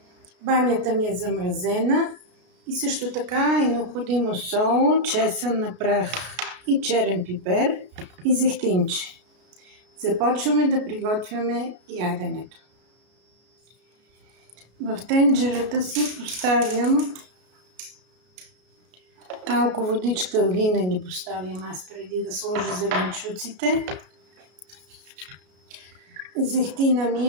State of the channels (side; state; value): left; late; 33 ms